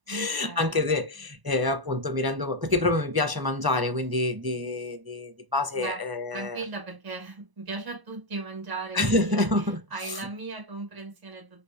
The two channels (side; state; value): left; late; 1.0 ms